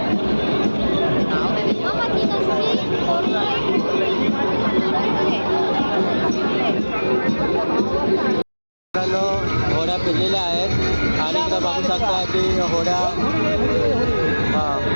आहेत आणि इथं बघू शकता की होड्या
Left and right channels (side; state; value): both; inverted; correlation -1.00